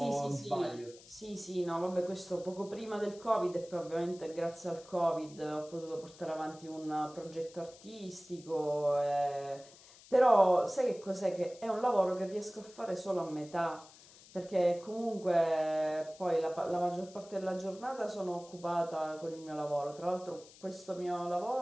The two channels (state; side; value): noise; left; hiss, 22 dB below the sound